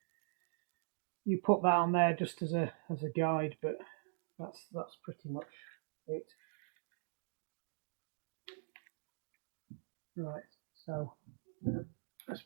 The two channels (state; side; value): silent; left; digital silence